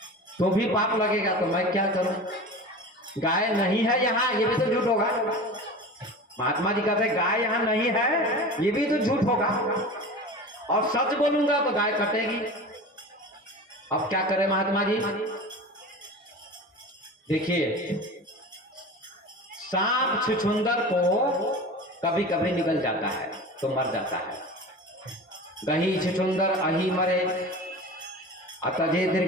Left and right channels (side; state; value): both; normal; correlation 0.34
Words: तो भी पाप लगेगा। तो मैं क्या करूं? गाय नहीं है यहाँ, ये भी तो झूठ होगा। महात्मा जी कहते गाय यहाँ नहीं है, ये भी तो झूठ होगा, और सच बोलूंगा तो गाय कटेगी। अब क्या करें महात्मा जी? देखिए, सांप छुछुंदर को कभी कभी निकल जाता है तो मर जाता है। गही छुछुंदर अही मरे, अतजे